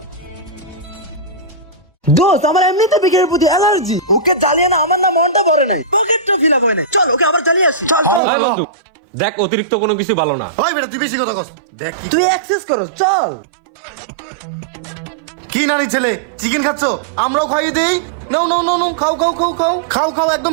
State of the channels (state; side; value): drops out; left; at 8.2 s